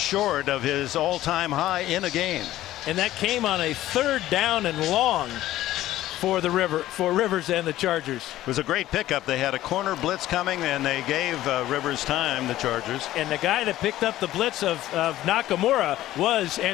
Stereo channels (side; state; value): right; quieter; 14.5 dB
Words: of his all-time high in a game. And that came on a 3rd down and long for Rivers and the Chargers. It was a great pickup. They had a corner blitz coming, and they gave Rivers time, the Chargers. And the guy that picked up the blitz of Nakamura was